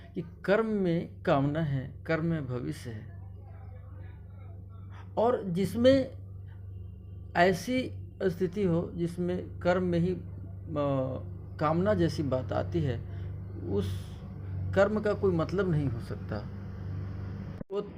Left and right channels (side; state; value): both; identical; correlation 1.00